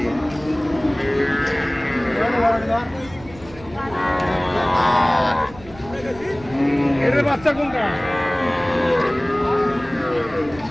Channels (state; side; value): noise; right; rumble, 20 dB below the sound